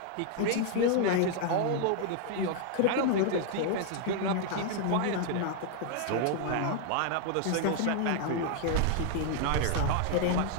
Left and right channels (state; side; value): different; both; correlation 0.00